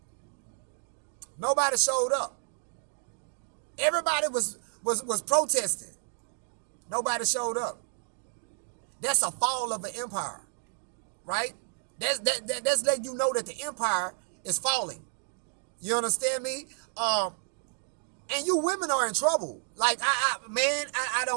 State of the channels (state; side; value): silent; left; 57 dB below the other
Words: Nobody showed up. Everybody was protesting. Nobody showed up. That's a fall of an empire, right? That's letting you know that the empire is falling. You understand me? And you women are in trouble. Like I